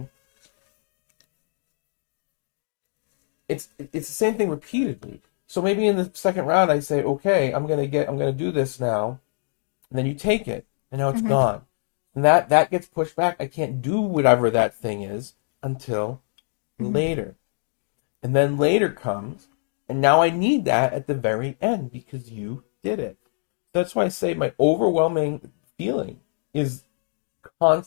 It's the same thing repeatedly. So maybe in the second round I say, okay, I'm gonna do this now, and then you take it, and now it's gone. So that gets pushed back. I can't do whatever that thing is until later. And then later comes, and now I need that at the very end because you did it. So that's why I say my overwhelming feeling is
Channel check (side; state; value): right; silent; digital silence